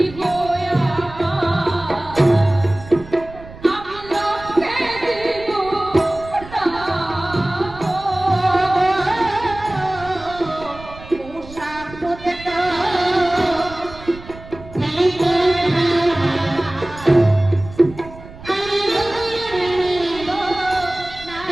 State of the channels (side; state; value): right; noise; rumble, 17 dB below the sound